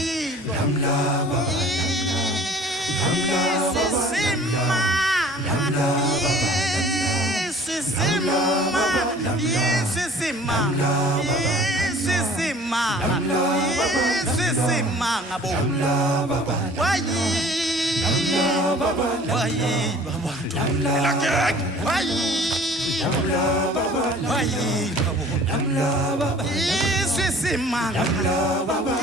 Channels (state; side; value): normal; both; correlation 0.49